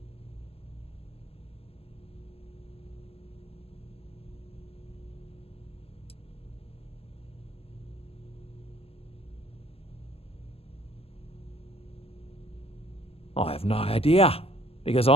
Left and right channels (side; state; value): right; late; 0.28 ms